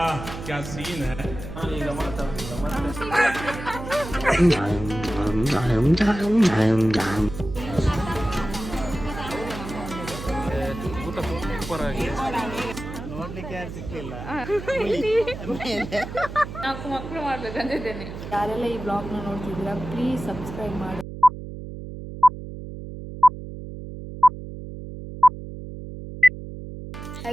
क्या सीन है. ನೋಡ್ಲಿಕ್ಕೆ ಯಾರು ಸಿಕ್ಕಿಲ್ಲ. ನಾಲ್ಕು ಮಕ್ಕಳು ಮಾಡ್ಬೇಕಂತಿದ್ದೇನೆ. ಯಾರೆಲ್ಲ ಈ ಬ್ಲಾಗ್ನ ನೋಡ್ತಿದ್ದೀರಾ ಪ್ಲೀಸ್ ಸಬ್ಸ್ಕ್ರೈಬ್ ಮಾಡಿ.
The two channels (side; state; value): right; noise; hum, 10 dB below the sound